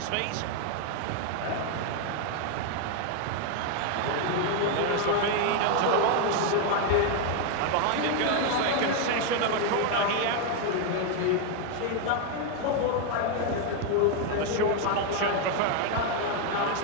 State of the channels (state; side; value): different; both; correlation 0.01